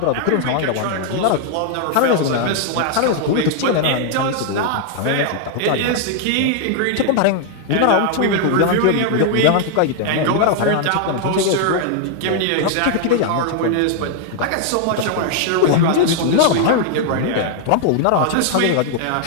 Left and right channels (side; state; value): both; different; correlation 0.00